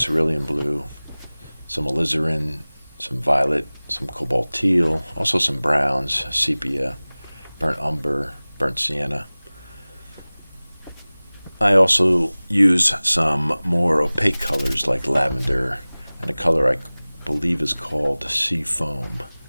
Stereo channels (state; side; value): inverted; both; correlation -0.99